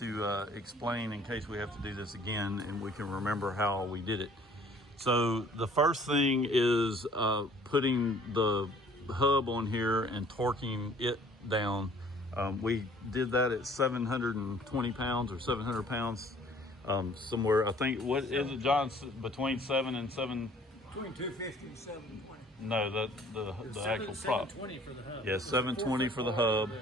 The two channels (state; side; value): normal; both; correlation 0.55